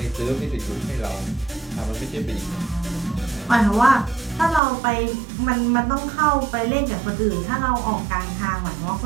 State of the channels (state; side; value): drops out; left; at 4.6 s